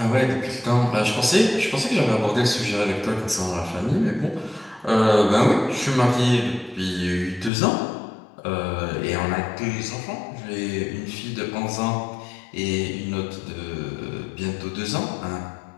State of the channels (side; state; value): right; drops out; at 7.5 s